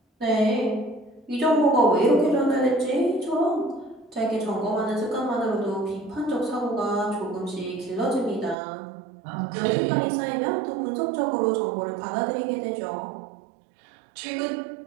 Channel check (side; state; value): left; drops out; at 8.6 s